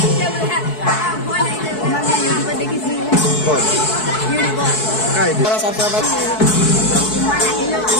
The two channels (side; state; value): right; late; 4.6 ms